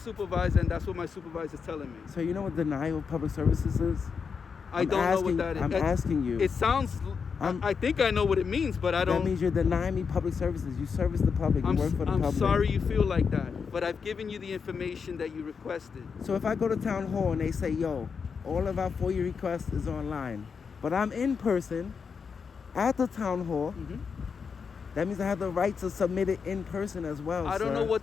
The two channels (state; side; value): quieter; right; 5.9 dB